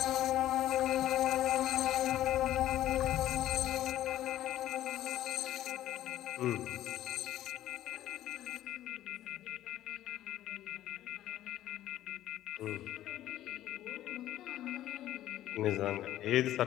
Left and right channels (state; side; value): quieter; right; 13.4 dB